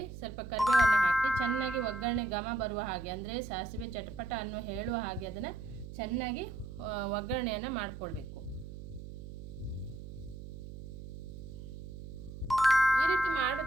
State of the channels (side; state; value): right; noise; hum, 11 dB below the sound